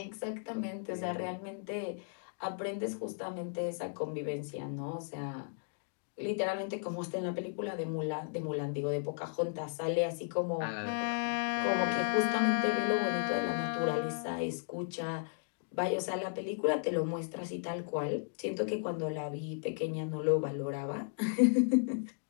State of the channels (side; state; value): right; silent; digital silence